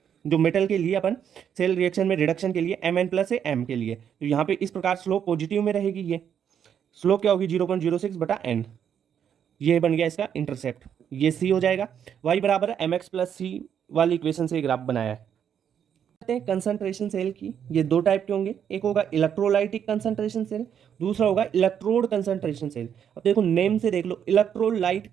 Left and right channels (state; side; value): quieter; left; 8.5 dB